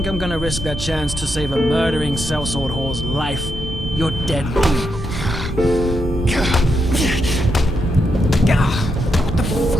I'm gonna risk that chance to save a murdering sellsword whore's life, you're dead wrong. What the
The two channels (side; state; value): both; normal; correlation 0.82